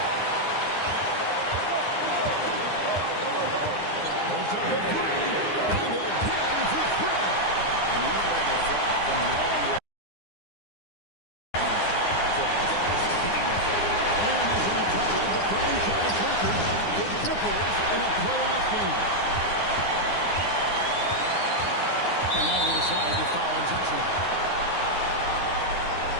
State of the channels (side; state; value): right; late; 9.8 ms